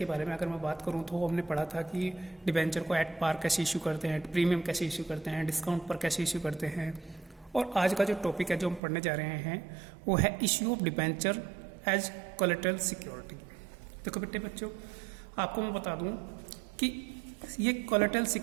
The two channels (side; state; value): left; drops out; at 8.8 s